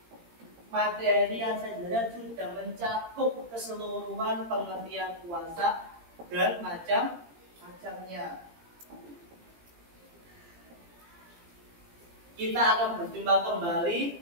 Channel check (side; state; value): left; late; 17 ms